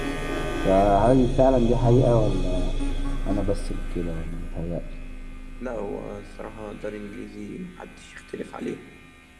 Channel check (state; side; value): identical; both; correlation 1.00